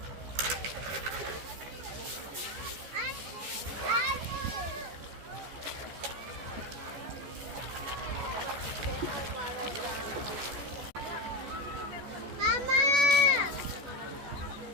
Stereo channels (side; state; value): left; late; 14 ms